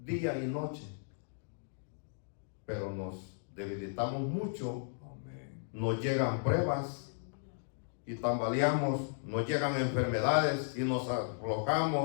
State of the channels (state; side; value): silent; right; digital silence